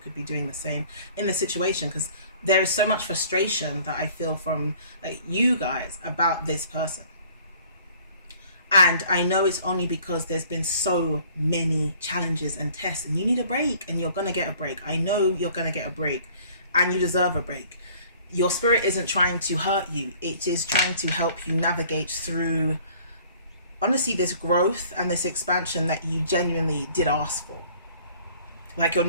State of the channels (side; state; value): both; inverted; correlation -0.54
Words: be doing the same in the situation. Because there is so much frustration that I feel from like you guys about this person. And I know it's only because there's been so many challenges and tests, and you need a break, and you're going to get a break. I know you're going to get a break, and you deserve a break. Your spirit isn't trying to hurt you. It is trying to help you navigate through, honestly, this growth and this expansion that you genuinely did ask for. Like, you're